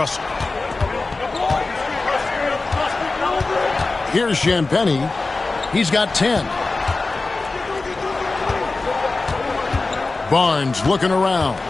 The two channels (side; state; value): right; quieter; 3.6 dB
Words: Here's Champagnie. He's got 10. Barnes looking around.